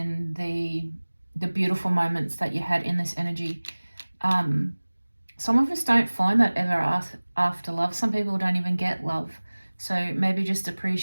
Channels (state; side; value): inverted; both; correlation -1.00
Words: the beautiful moments that you had in this energy. Some of us don't find that ever after love. Some people don't even get love. So maybe just